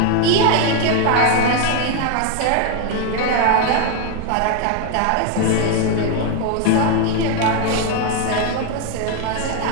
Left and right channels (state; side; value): different; both; correlation 0.01